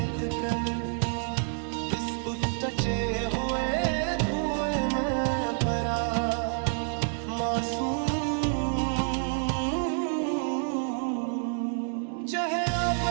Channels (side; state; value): left; silent; 57 dB below the other